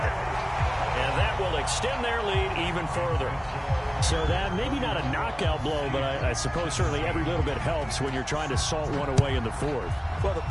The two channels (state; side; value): identical; both; correlation 1.00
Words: And that will extend their lead even further. So that, maybe not a knockout blow, but I suppose certainly every little bit helps when you're trying to salt one away in the 4th. Well, the